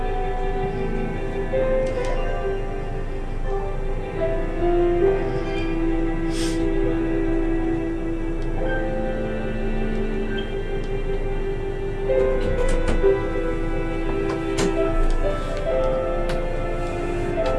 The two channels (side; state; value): both; identical; correlation 1.00